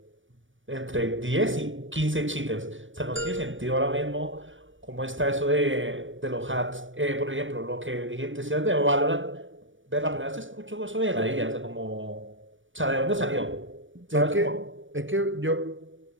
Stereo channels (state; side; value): late; left; 0.56 ms